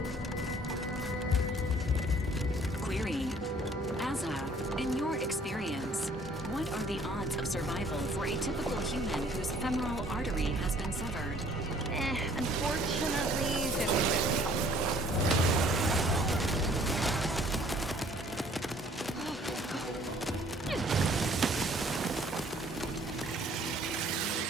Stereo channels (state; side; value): normal; both; correlation 0.57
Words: Query. Asa, in your experience, what are the odds of survival for a typical human whose femoral artery has been severed? Unfortunately, 50-50.